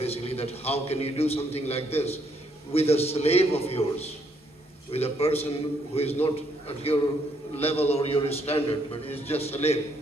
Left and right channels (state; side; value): normal; both; correlation 0.71